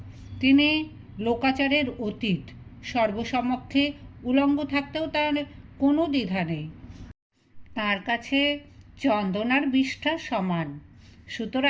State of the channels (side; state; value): both; identical; correlation 1.00